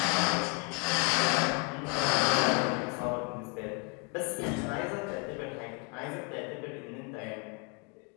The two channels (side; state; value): right; quieter; 34.7 dB